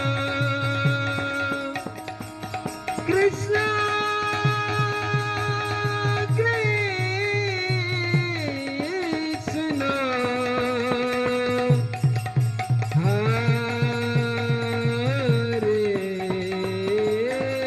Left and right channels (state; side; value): identical; both; correlation 1.00